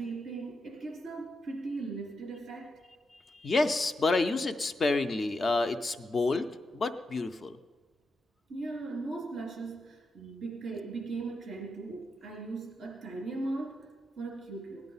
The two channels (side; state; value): both; normal; correlation 0.85